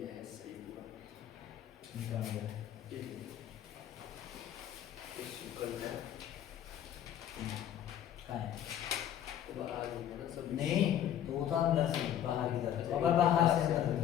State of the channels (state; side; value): quieter; right; 10.6 dB